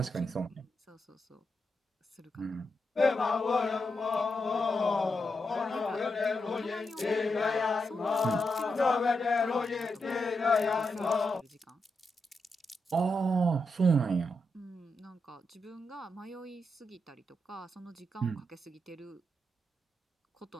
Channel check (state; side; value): normal; both; correlation 0.85